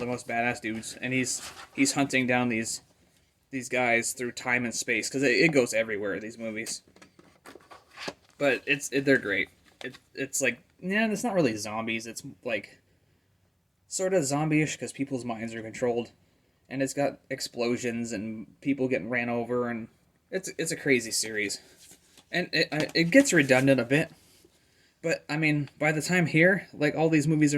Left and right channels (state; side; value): identical; both; correlation 1.00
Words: most badass dudes. And he's hunting down these guys through time and space because it goes everywhere, these movies. But they're great. It's like, yeah, it's not really zombies. It's like sort of zombie-ish because people's minds are controlled, and it's got explosions and people getting ran over, and it's a crazy series. And it gets redundant a bit, but I mean, by the time here, like all these movies